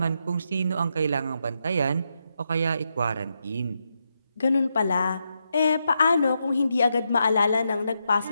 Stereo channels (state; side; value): inverted; both; correlation -0.83